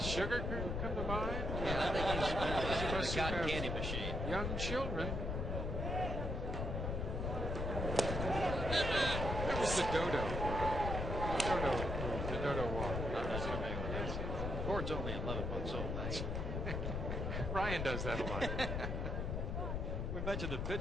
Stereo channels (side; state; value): left; noise; rumble, 1 dB below the sound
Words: come to mind? Yeah, I think he's been the cotton candy machine. Young children. That was the dodo move, the dodo walk. I'm not familiar with that. Court's only 11 months old. Ryan does that a lot. We mentioned the